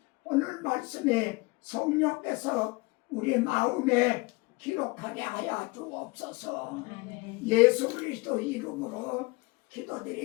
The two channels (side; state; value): right; quieter; 25.5 dB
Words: 오늘 말씀이 성령께서 우리 마음에 기록하게 하여 주옵소서. 아멘. 예수 그리스도 이름으로